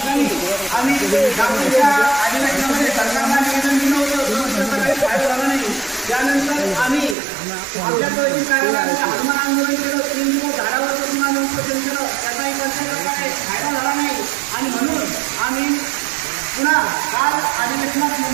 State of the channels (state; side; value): drops out; left; at 7.2 s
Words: त्यानंतर आम्ही आमच्या हनुमान आंदोलन केलं 3 दिवस झाडावर बसून आम्ही उपोषण केलं त्याचाही प्रकारे फायदा झाला नाही आणि म्हणून आम्ही पुन्हा काल अधिवेशनात